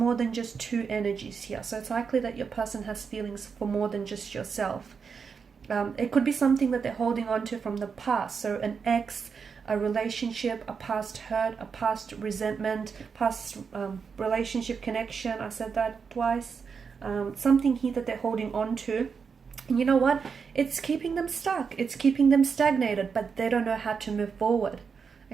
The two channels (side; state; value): left; quieter; 5.9 dB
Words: than just two energies here, so it's likely that your person has feelings for more than just yourself. It could be something that they're holding on to from the past. So an ex, a relationship, a past hurt, a past resentment, past relationship connection. I said that twice. Something here that they're holding on to. And you know what? It's keeping them stuck. It's keeping them stagnated, but they don't know how to move forward.